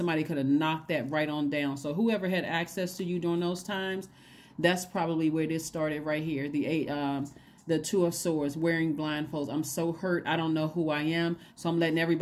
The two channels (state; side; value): identical; both; correlation 1.00